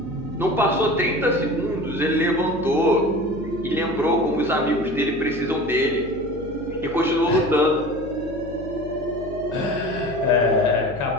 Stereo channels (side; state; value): left; noise; hum, 14 dB below the sound